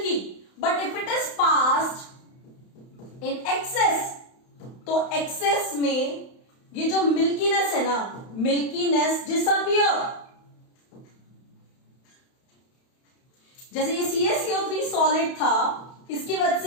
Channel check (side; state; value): right; late; 31 ms